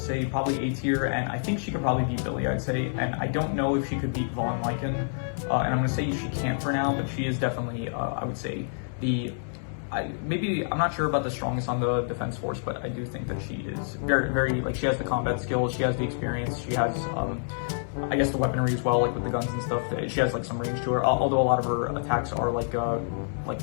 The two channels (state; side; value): silent; right; digital silence